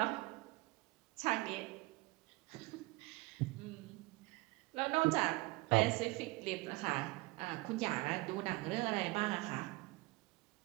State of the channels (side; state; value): left; quieter; 23.3 dB